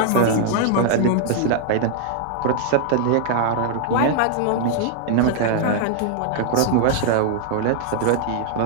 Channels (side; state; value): both; different; correlation 0.00